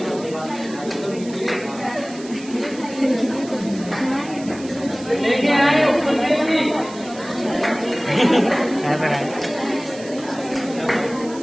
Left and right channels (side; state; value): right; noise; hiss, 18 dB below the sound